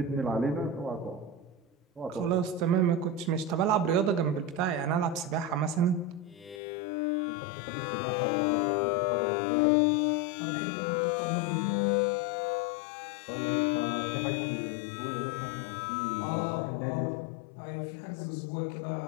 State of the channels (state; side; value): drops out; right; at 6.6 s